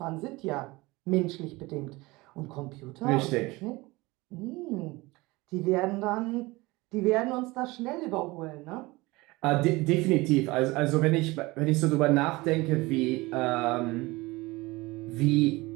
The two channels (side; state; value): left; quieter; 21.9 dB